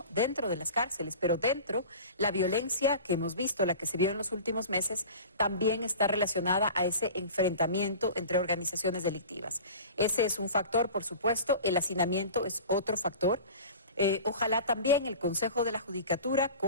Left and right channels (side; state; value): both; inverted; correlation -0.37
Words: dentro de las cárceles, pero dentro la violencia que hemos visto, la que se vio en los últimos meses, también está relacionada a ese enfrentamiento entre organizaciones delictivas. Ese es un factor, por supuesto, el hacinamiento es otro factor. Ojalá también el Consejo de la Judicatura,